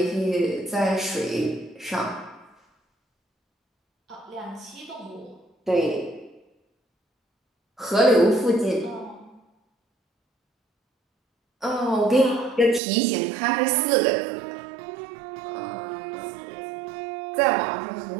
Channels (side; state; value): left; drops out; at 12.8 s